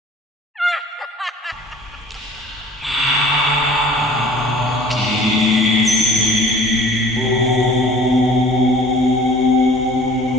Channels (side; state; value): both; normal; correlation 0.49